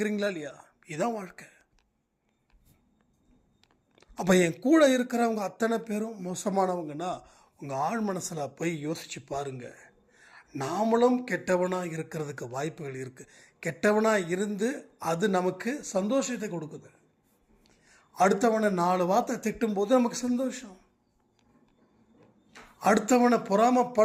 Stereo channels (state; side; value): identical; both; correlation 1.00